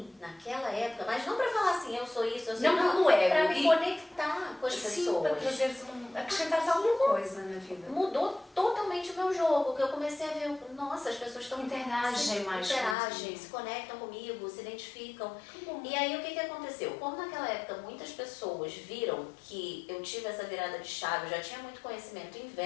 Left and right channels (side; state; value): right; drops out; at 13.0 s